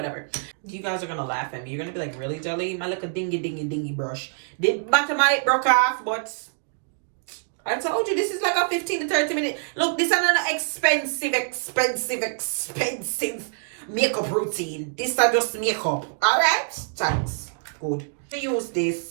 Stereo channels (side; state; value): left; silent; digital silence